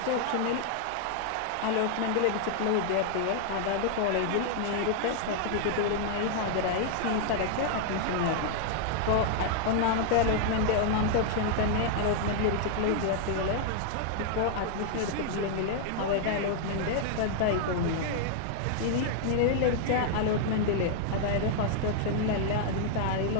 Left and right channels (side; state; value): both; different; correlation 0.00